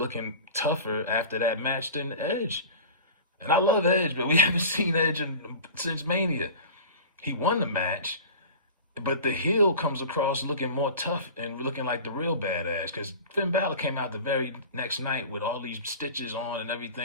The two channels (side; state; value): both; inverted; correlation -0.35